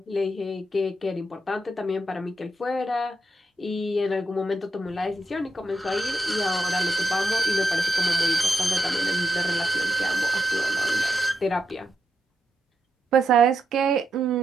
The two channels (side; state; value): both; normal; correlation 0.84